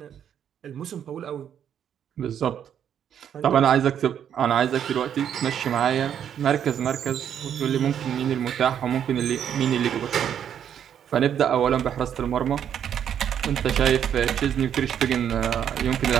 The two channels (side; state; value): left; quieter; 9.1 dB